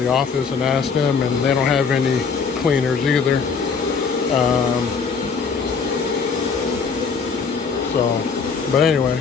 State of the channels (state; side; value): quieter; right; 5.5 dB